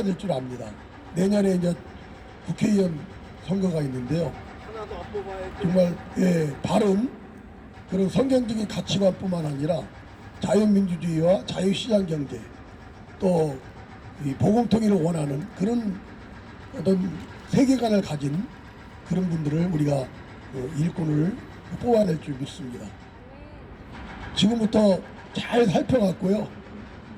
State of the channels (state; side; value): identical; both; correlation 1.00